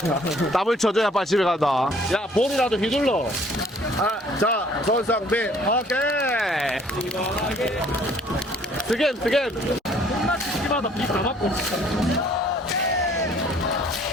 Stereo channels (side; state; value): both; normal; correlation 0.58